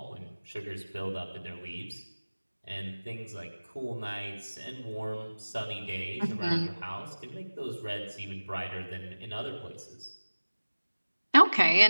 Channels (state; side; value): inverted; both; correlation -1.00